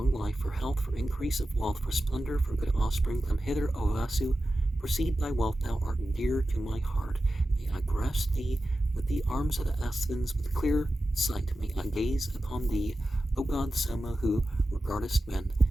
life, for health, for increase of wealth, for splendor, for good offspring. Come hither, O Vasu. Proceed thy wealth, thou art dear to my heart. May I grasp thee with the arms of the Asthans, with clear sight. May I gaze upon thee, O God Soma, who regardest men.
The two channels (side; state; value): both; normal; correlation 0.93